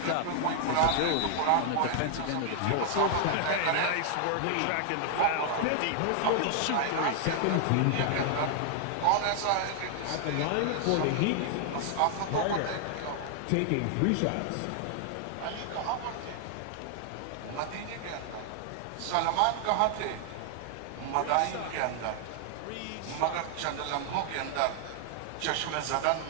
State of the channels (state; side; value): different; both; correlation 0.00